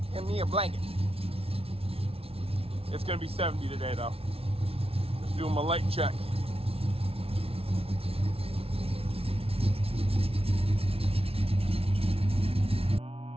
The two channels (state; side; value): late; left; 0.28 ms